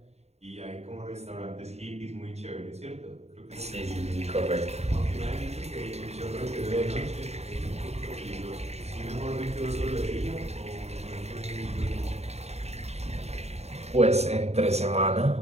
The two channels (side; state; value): left; late; 0.31 ms